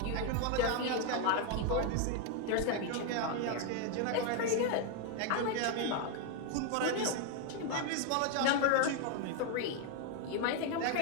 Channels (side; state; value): both; different; correlation 0.01